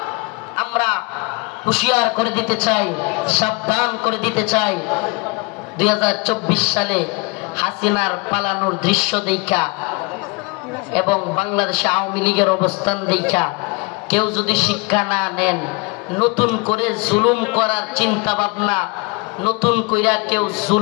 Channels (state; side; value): quieter; right; 28.2 dB